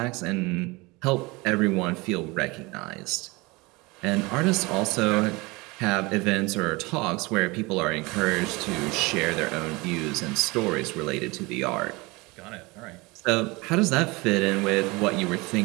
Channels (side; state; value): left; quieter; 24.3 dB